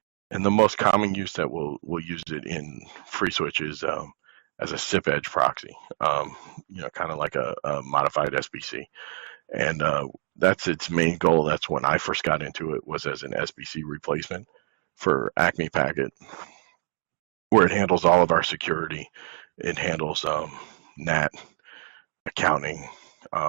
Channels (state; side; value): silent; left; digital silence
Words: And the most common use that we'll use it in FreeSWITCH is as a SIP Edge Proxy, kind of like a modified SBC. And that's its main goal. That's when I first got into it, was as an SBC replacement for Acme Packet, where it handles all of our security. It handles NAT, accounting,